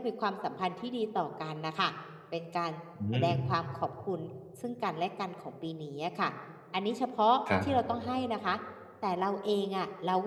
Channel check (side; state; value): both; identical; correlation 1.00